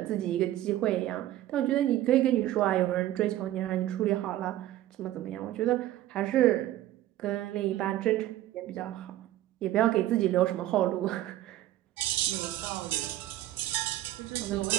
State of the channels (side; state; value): left; quieter; 14.2 dB